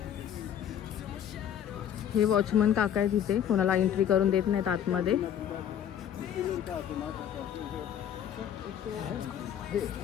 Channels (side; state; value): right; quieter; 9.7 dB